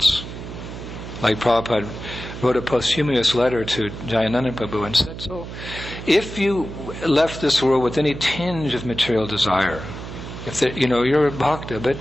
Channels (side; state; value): right; noise; hum, 10 dB below the sound